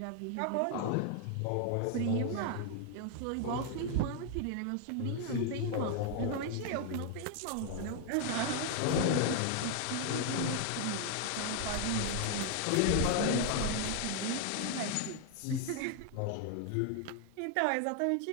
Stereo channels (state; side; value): different; both; correlation 0.00